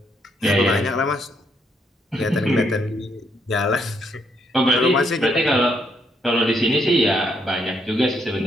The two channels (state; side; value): normal; both; correlation 0.74